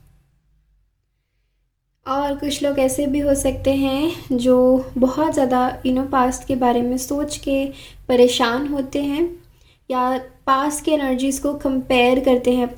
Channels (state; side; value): identical; both; correlation 1.00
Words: और कुछ लोग ऐसे भी हो सकते हैं जो बहुत ज़्यादा पास्ट के बारे में सोच के परेशान होते हैं, या पास्ट के एनर्जीज़ को कंपेयर करते हैं